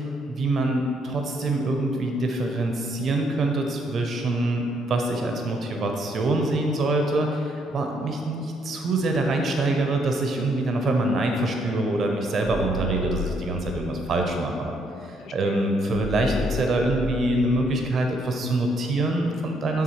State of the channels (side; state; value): both; normal; correlation 0.72